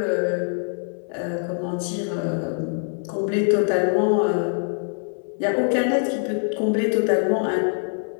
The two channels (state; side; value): silent; right; 61 dB below the other